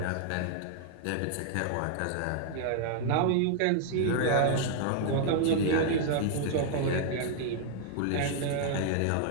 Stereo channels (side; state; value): both; different; correlation -0.01